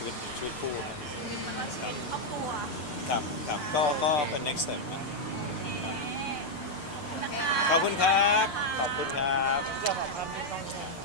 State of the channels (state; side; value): late; right; 6.8 ms